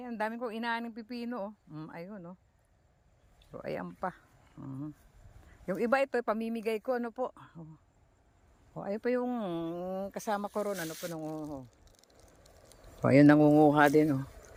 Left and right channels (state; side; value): identical; both; correlation 1.00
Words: dami kong inaaning pipino. Ayun, no? So, ayan pa. Yung iba ito, pamimigay ko, ano po? Ayun pa yung kasama ko ron, ano po, nangunguha. Ayun, nangunguha din,